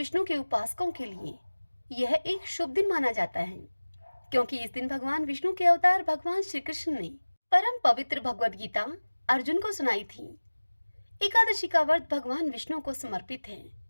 के उपासकों के लिए यह एक शुभ दिन माना जाता है, क्योंकि इस दिन भगवान विष्णु के अवतार भगवान श्री कृष्ण ने परम पवित्र भगवद गीता अर्जुन को सुनाई थी। एकादशी का व्रत भगवान विष्णु को समर्पित है।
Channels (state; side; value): inverted; both; correlation -1.00